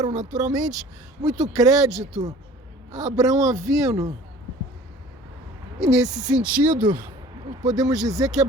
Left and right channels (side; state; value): both; normal; correlation 0.47